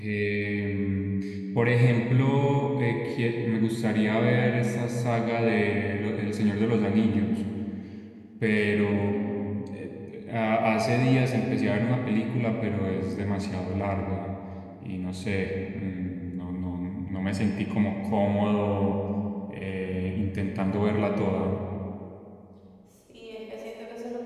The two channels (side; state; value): both; identical; correlation 1.00